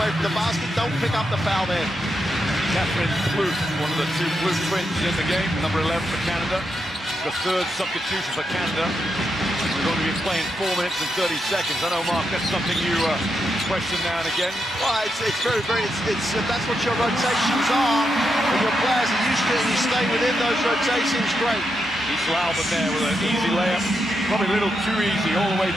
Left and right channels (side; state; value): both; normal; correlation 0.83